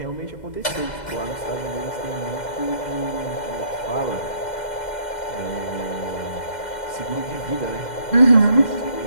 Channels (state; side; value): late; right; 2.1 ms